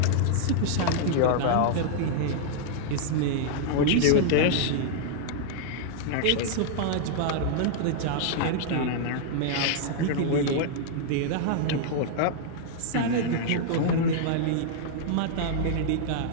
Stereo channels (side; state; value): both; different; correlation -0.01